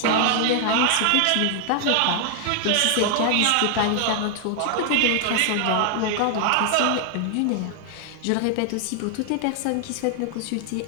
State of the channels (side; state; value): both; different; correlation 0.00